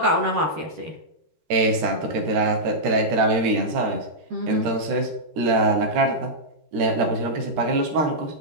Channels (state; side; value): late; left; 13 ms